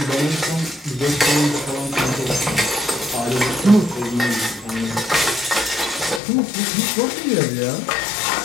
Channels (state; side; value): drops out; right; at 6.2 s